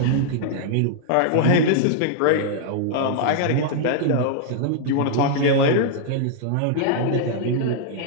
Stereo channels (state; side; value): different; both; correlation -0.01